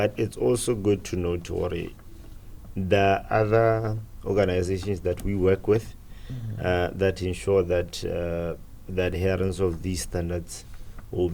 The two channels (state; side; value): identical; both; correlation 1.00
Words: it's also good to note the other organizations that we work with that ensure that the adherence of these standards will